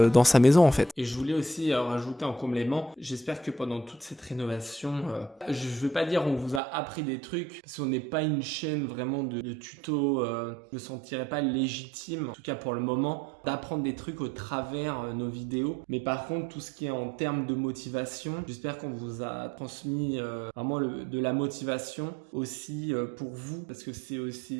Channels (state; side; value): drops out; left; at 6.6 s